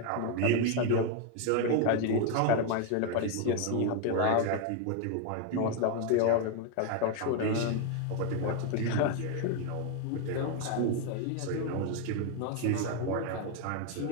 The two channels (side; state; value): both; different; correlation 0.01